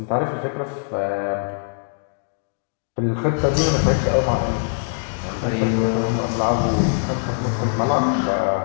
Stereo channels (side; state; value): right; silent; digital silence